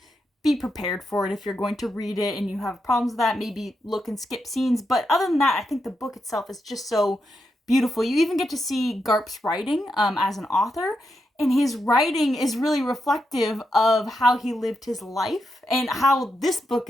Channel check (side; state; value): both; normal; correlation 0.84